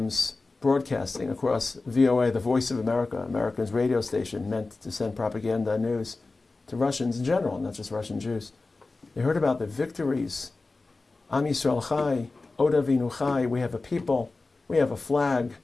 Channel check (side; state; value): right; quieter; 3.5 dB